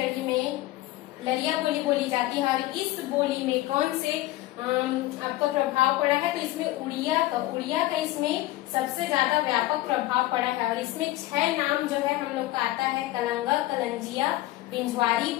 में लरिया बोली बोली जाती है। और इस बोली में कौन से आपको प्रभाव पड़ा है, तो इसमें उड़िया का इसमें सबसे ज्यादा व्यापक प्रभाव पड़ा है। और इसमें 6 नाम जो है हम लोग का आता है, कलंगा, कलंजिया, पिंजवारी,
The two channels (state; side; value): quieter; right; 16.8 dB